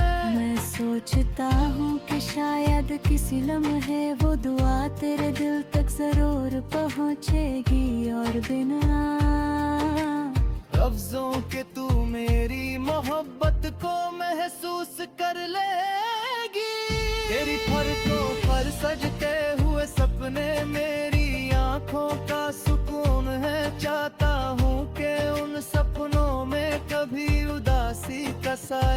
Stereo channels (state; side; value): identical; both; correlation 1.00